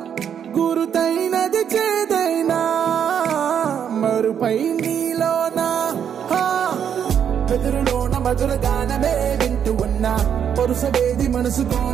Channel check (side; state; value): left; quieter; 8.4 dB